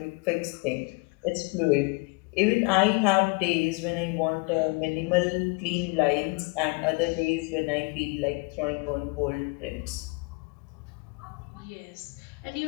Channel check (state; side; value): quieter; right; 30.1 dB